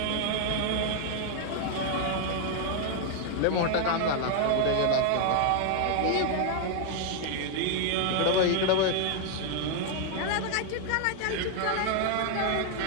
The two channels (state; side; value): different; both; correlation 0.00